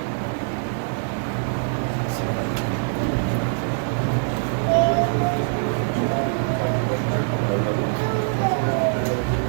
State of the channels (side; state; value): left; silent; 63 dB below the other